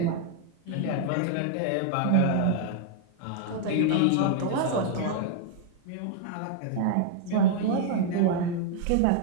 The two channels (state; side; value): different; both; correlation -0.01